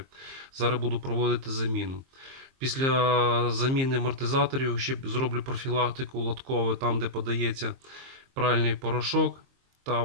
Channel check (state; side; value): late; left; 22 ms